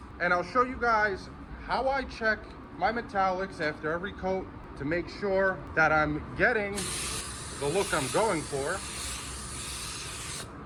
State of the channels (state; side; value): identical; both; correlation 1.00